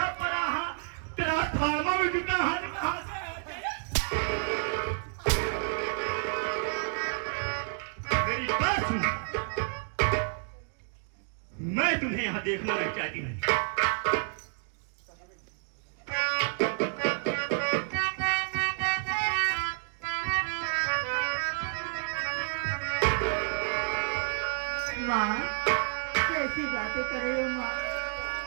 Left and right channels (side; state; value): left; silent; 58 dB below the other